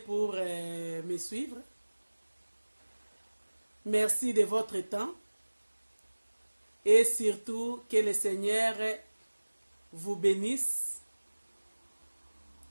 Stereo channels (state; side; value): inverted; both; correlation -1.00